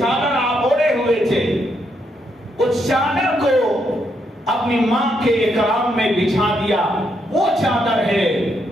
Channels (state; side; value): normal; both; correlation 0.77